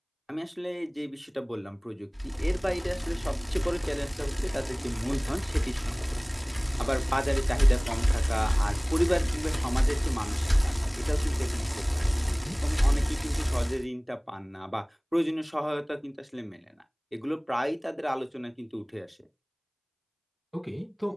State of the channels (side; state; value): both; identical; correlation 1.00